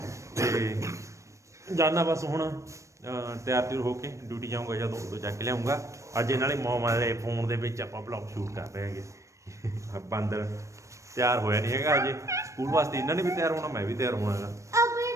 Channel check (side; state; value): left; late; 0.15 ms